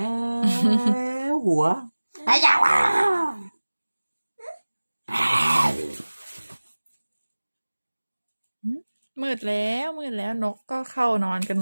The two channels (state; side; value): inverted; both; correlation -1.00